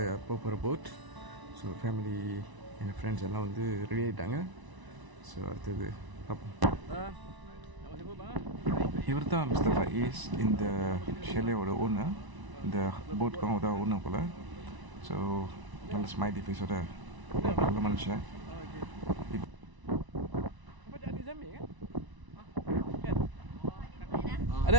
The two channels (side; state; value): left; late; 1.0 ms